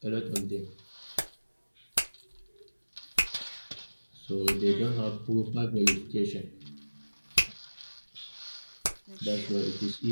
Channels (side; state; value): both; inverted; correlation -1.00